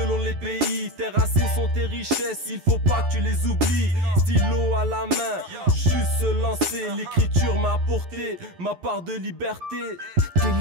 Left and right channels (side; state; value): left; late; 11 ms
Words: les pays. Tes racines sont tes richesses, il faut pas que tu les oublies. Stylo à la main, juste se lancer. L'écriture m'a apporté ma part de liberté. T'es